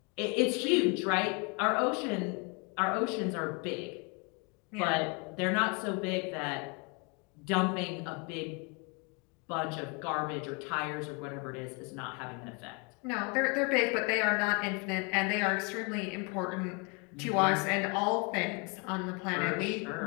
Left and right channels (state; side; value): quieter; right; 32.7 dB